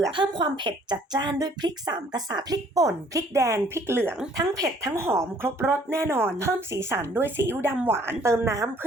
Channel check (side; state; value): both; normal; correlation 0.59